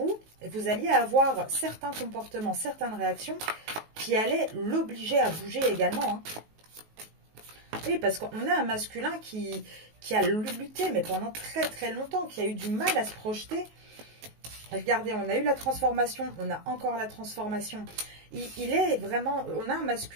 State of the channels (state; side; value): late; left; 19 ms